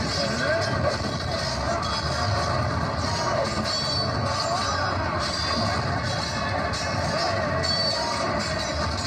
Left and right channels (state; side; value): identical; both; correlation 1.00